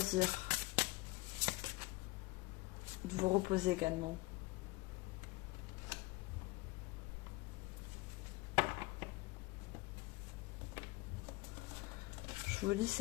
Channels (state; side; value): quieter; right; 21.5 dB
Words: De vous reposer également. Je vous dis